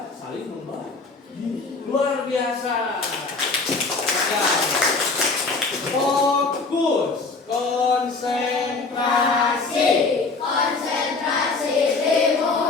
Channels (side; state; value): right; quieter; 4.0 dB